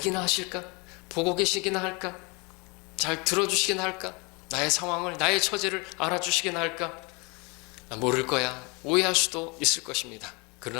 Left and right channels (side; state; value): right; quieter; 29.3 dB